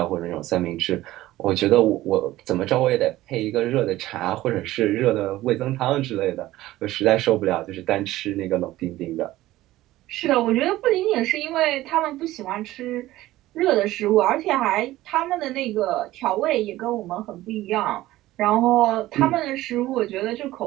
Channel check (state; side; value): quieter; left; 16.2 dB